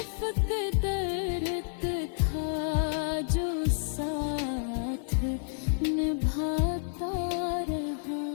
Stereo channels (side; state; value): right; silent; 58 dB below the other